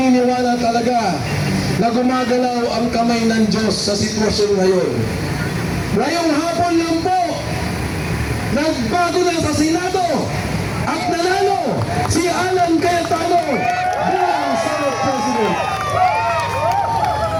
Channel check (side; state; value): both; identical; correlation 1.00